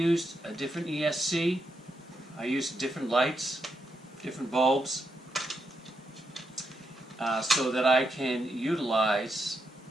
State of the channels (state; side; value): normal; both; correlation 0.82